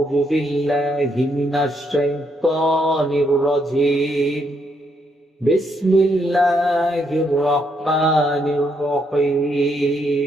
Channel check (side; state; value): both; normal; correlation 0.75